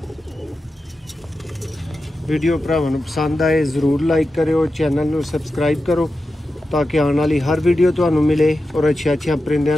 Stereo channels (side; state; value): both; normal; correlation 0.91